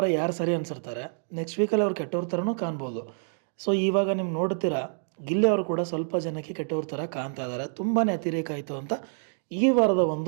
ಯಾರು ಸರಿ ಅನಿಸಿರ್ತಾರೆ, ನೆಕ್ಸ್ಟ್ ವೀಕಲ್ಲಿ ಅವ್ರು ಕೆಟ್ಟವ್ರ ಥರನೂ ಕಾಣ್ಬೋದು. ಸೊ ಇವಾಗ ನೀವು ನೋಡ್ತೀರಾ, ಗಿಲ್ಲಿ ಅವರು ಕೂಡ ಸ್ವಲ್ಪ ಜನಕ್ಕೆ ಕೆಟ್ಟವ್ರ ಥರ ಕಾಣ್ತಾ ಇದ್ದಾರೆ. ತುಂಬಾ ಅತಿರೇಕ ಆಯಿತು ಅಂತ ಈ ವಾರದ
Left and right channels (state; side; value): silent; left; digital silence